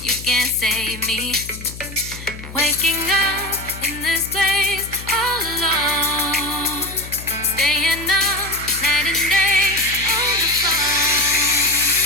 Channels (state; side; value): noise; left; hum, 13 dB below the sound